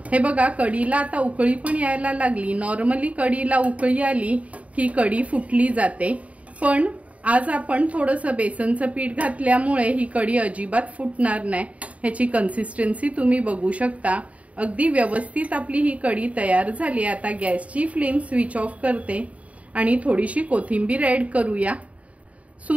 हे बघा कढीला आता उकळी पण यायला लागली। नॉर्मली कढीला उकळी आली की कढी फुटली जाते, पण आज आपण थोडंसं बेसनचं पीठ घातल्यामुळे ही कढी अजिबात फुटणार नाही। ह्याची कन्सिस्टन्सी तुम्ही बघू शकता। अगदी व्यवस्थित आपली ही कढी तयार झाली। आता गॅसची फ्लेम स्विच ऑफ करते आणि थोडीशी कोथिंबीर ऍड करूया।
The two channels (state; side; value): late; left; 0.067 ms